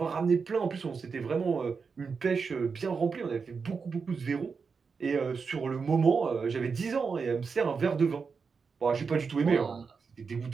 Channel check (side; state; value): left; quieter; 5.3 dB